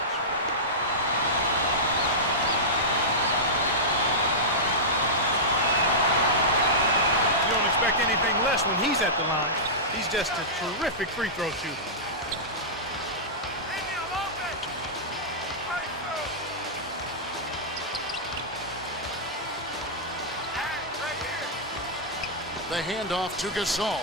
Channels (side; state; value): both; normal; correlation -0.14